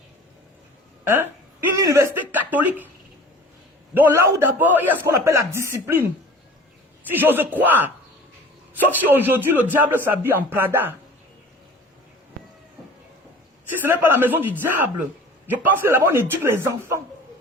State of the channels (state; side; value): normal; both; correlation 0.43